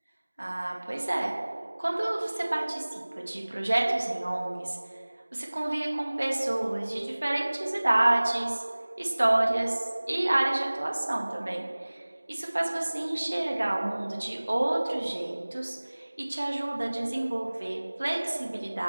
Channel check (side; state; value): both; inverted; correlation -1.00